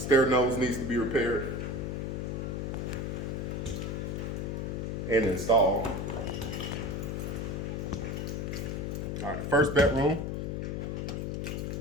stair nose needs to be repaired and installed. All right, first bedroom.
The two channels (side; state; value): left; noise; hum, 2 dB below the sound